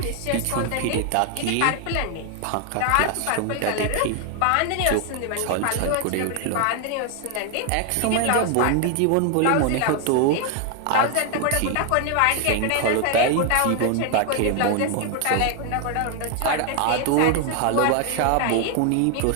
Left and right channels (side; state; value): both; different; correlation 0.01